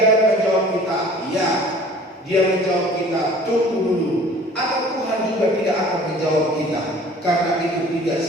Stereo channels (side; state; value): both; normal; correlation 0.48